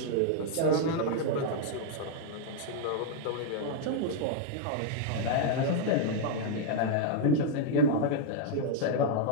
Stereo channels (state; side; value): different; both; correlation -0.01